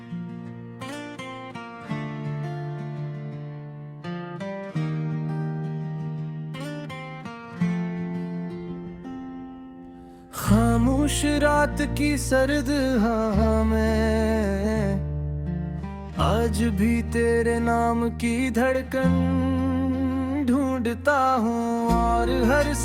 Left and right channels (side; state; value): both; identical; correlation 1.00